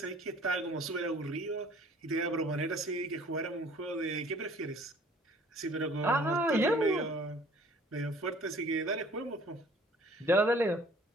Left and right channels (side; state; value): both; normal; correlation 0.54